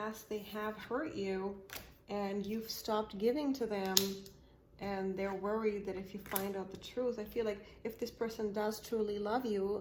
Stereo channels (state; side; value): identical; both; correlation 1.00